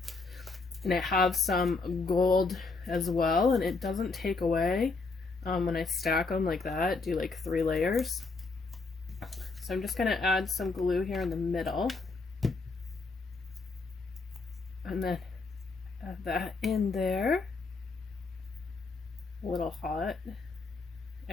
And I have some gold as well, and it doesn't take away when I stack them like that, do like 3 layers. So I'm just going to add some glue here in the middle. And then add that in there. A little hot.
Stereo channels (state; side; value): quieter; right; 3.9 dB